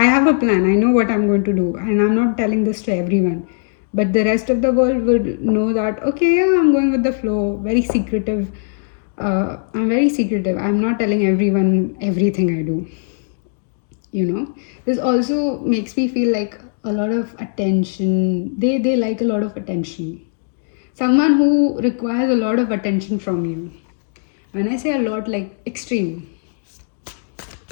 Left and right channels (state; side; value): silent; right; digital silence